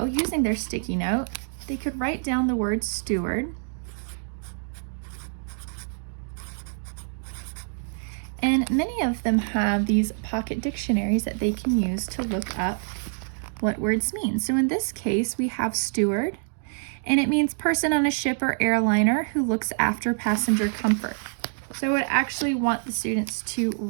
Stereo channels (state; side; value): silent; left; digital silence